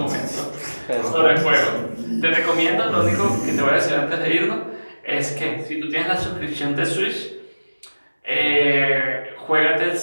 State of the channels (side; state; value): both; inverted; correlation -1.00